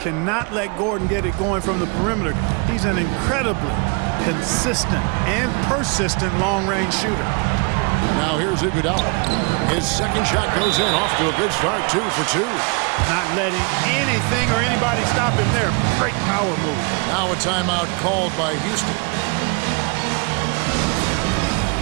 let Gordon get it going from the perimeter. He's an incredibly consistent and persistent long-range shooter. Now here's Iguodala. His second shot goes in, off to a good start, 2 for 2. Not letting anything or anybody stop him there. Great power move. Now a timeout called by Houston.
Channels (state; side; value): quieter; left; 32.9 dB